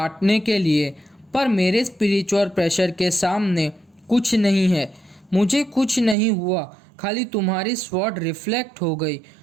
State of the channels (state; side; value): drops out; left; at 6.2 s